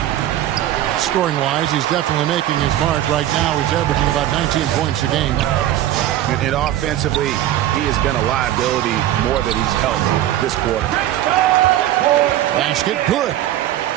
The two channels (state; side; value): quieter; left; 12.9 dB